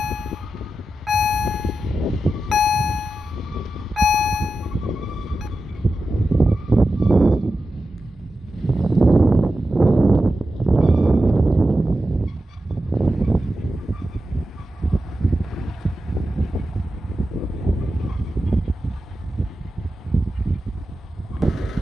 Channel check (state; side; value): normal; both; correlation 0.91